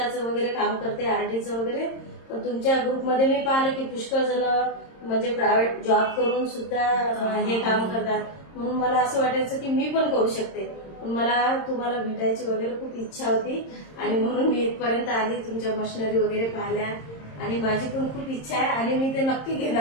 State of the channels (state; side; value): late; right; 26 ms